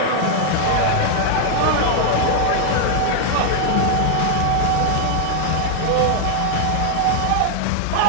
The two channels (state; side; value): different; both; correlation 0.00